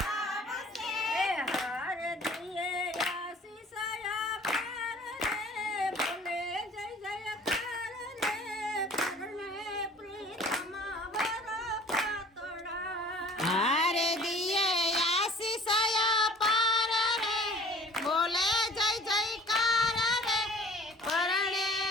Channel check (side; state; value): both; normal; correlation 0.50